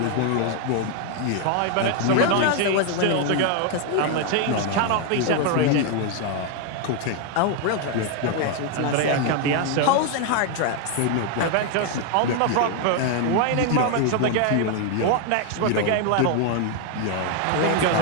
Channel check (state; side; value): different; both; correlation 0.01